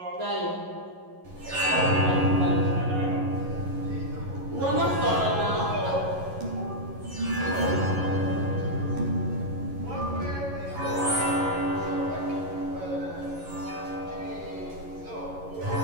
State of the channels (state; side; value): late; left; 11 ms